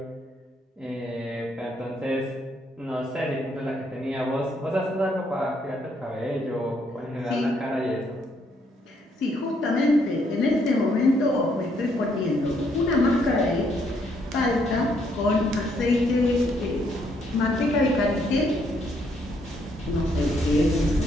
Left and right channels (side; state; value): both; normal; correlation 0.71